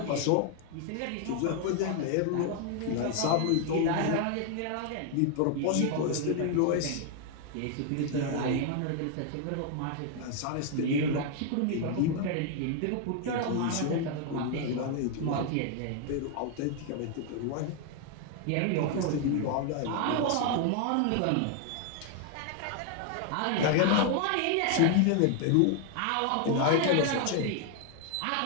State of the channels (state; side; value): different; both; correlation 0.00